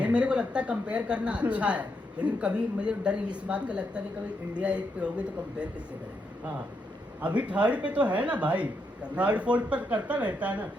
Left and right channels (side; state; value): both; normal; correlation 0.80